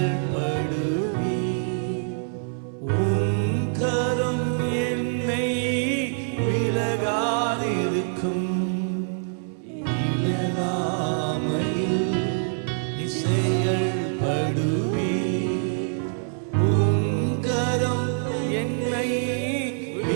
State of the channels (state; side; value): silent; left; digital silence